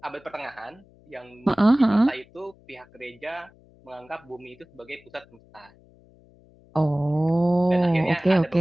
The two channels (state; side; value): noise; left; hum, 28 dB below the sound